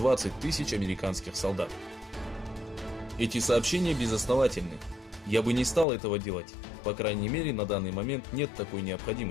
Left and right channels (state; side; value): drops out; right; at 5.9 s